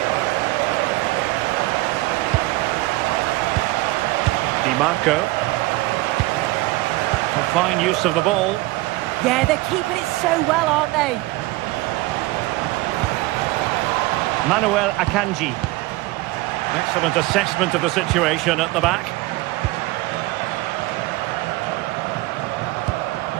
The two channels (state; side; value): quieter; left; 20.1 dB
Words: Di Marco. Fine use of the ball. Yeah, they're keeping it so well, aren't they? Manuel Akanji. Excellent assessment of the situation at the back.